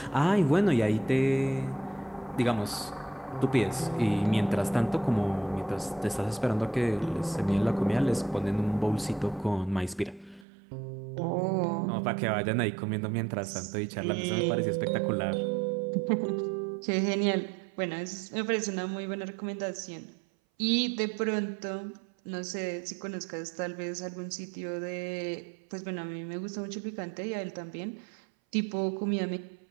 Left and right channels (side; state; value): left; drops out; at 10.5 s